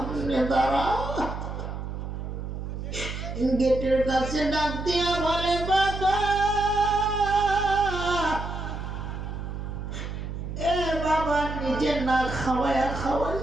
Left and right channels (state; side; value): noise; right; hum, 6 dB below the sound